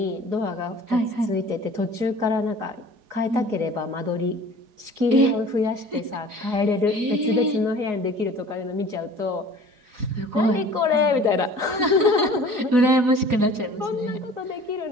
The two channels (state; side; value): late; left; 4.8 ms